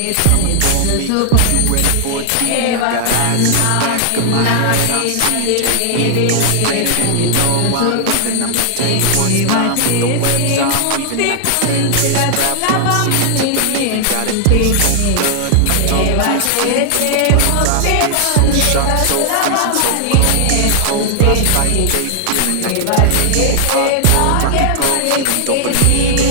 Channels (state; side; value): different; both; correlation 0.00